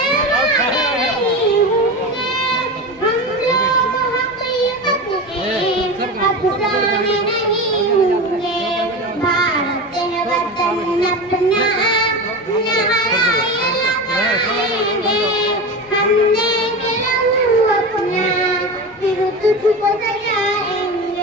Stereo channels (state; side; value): normal; both; correlation 0.25